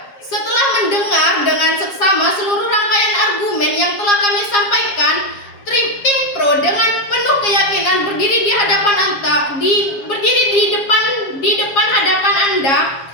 Setelah mendengar dengan seksama seluruh rangkaian argumen yang telah kami sampaikan, Timpro dengan penuh keyakinan berdiri di depan hadapan Anda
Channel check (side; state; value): right; late; 7.4 ms